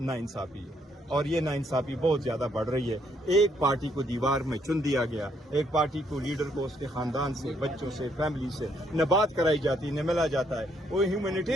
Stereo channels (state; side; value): normal; both; correlation 0.71